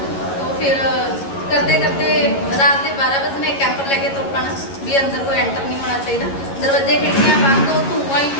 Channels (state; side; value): late; right; 11 ms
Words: तो फिर करते करते रात के 12 बजे कैंपर लैके तुर पाना भी अंदर कोई एंटर नहीं होना चाहिए, दरवाजे खिड़कियां बंद, हो धुआं ही